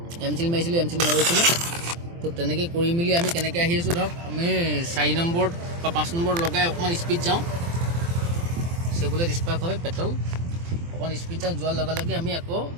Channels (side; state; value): left; late; 24 ms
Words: এম চিল মাৰিছিলোঁ এম চিল নৰৈছিলে তো তেনেকৈ কৰি মেলি আমি কেনেকৈ আহি আছোঁ ধৰক আমি 4 নম্বৰত বা 5 নম্বৰত লগাই অকণমান স্পীড যাওঁ চেবুলেট স্পাৰ্ক হয় পেট্ৰল অকণমান স্পীড যাওঁ যোৱাৰ লগে লগে আমি আকৌ